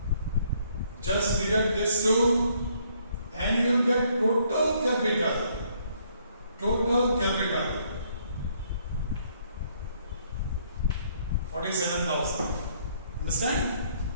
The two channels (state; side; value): inverted; both; correlation -0.67